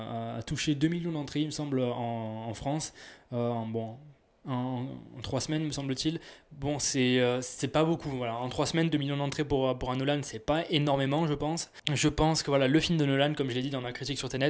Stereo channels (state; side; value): identical; both; correlation 1.00